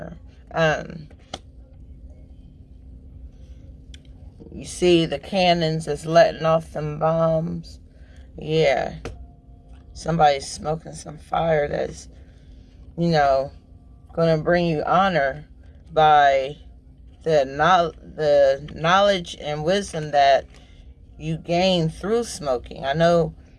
You see the cannons that's letting off them bombs. Yeah. Somebody's smoking some fire that's, you know, going to bring you honor by the knowledge and wisdom that you gain through smoking. I know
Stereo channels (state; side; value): identical; both; correlation 1.00